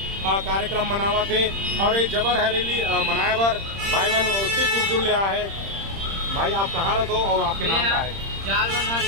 कार्यक्रम मनावा थे और ये जबर हरेली मनाए बर भाई मन उससे दूर ले आए है। भाई आप कहाँ रहते हो और आपके नाम क्या है? जालबंधा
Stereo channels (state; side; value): late; left; 30 ms